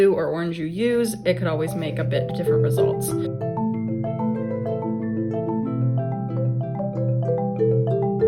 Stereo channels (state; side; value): identical; both; correlation 1.00